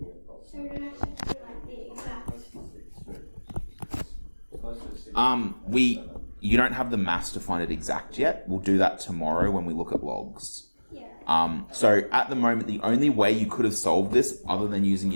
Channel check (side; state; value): both; inverted; correlation -1.00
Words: So we don't actually have to do like the exact. You don't have the maths to find it exact yet. We'll do that tomorrow when we look at logs. Yeah. So at the moment, the only way you could have solved this, other than using